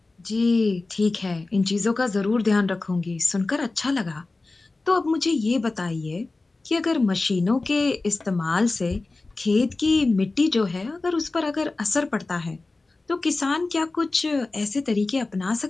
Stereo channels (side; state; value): right; quieter; 3.3 dB